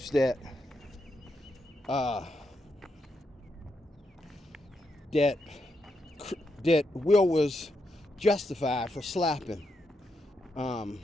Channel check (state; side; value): normal; both; correlation 0.83